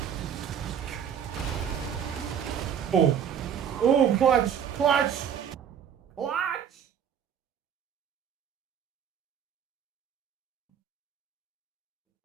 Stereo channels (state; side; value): quieter; left; 8.4 dB